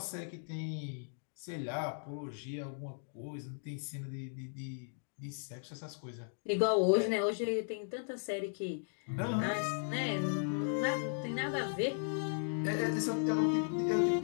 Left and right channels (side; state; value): right; silent; digital silence